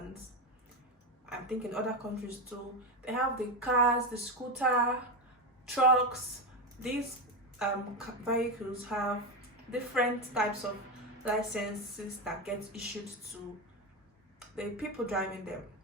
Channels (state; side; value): normal; both; correlation 0.13